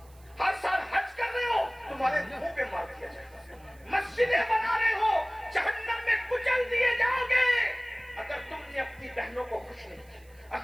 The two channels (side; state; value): right; noise; hiss, 29 dB below the sound